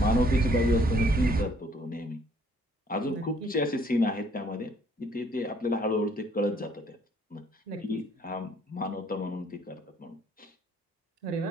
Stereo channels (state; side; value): normal; both; correlation 0.62